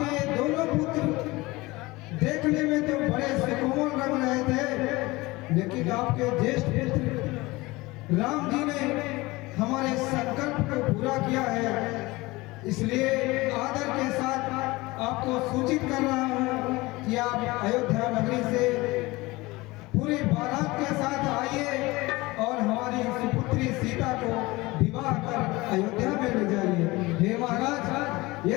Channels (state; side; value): quieter; right; 21.5 dB